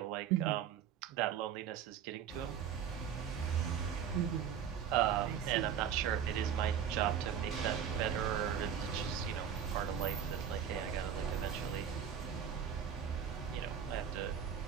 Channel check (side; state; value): left; quieter; 8.5 dB